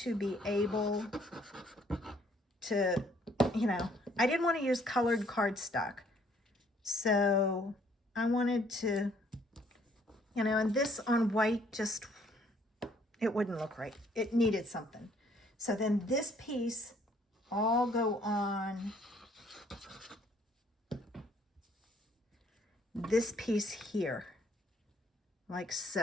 be able to, I didn't want to use colored cardstock. So I wanted to, and this on white just, it wouldn't look right. It needed something. So then this piece all go on this piece here, like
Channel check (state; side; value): normal; both; correlation 0.63